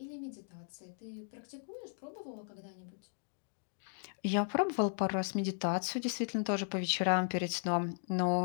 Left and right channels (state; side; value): silent; right; digital silence